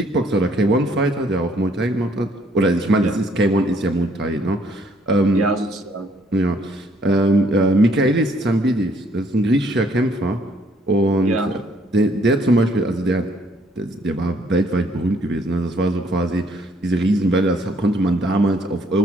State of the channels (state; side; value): normal; both; correlation 0.65